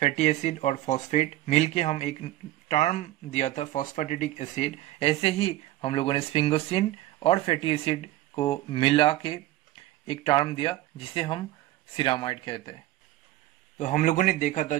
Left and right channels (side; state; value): left; quieter; 15.4 dB